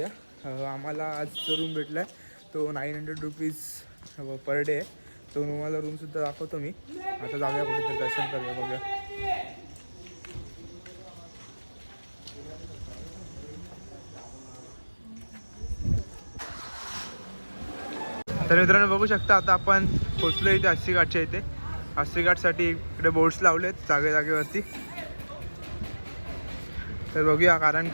आम्हाला आज जो रूम भेटला आहे तो 900 रुपीज पर डे आहे. तो तुम्हाला रूमसुद्धा दाखवतो मी. आता जाऊया कुठेतरी दर्शन करूया, बघूया. तर मित्रांनो बघू शकता आता आपण पोचलो इथे अस्सी घाटच्या इथे. अस्सी घाटसाठी इकडे बोर्ड्स लावलेत जागेवरती. तर बघूया, कारण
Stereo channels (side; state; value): both; inverted; correlation -1.00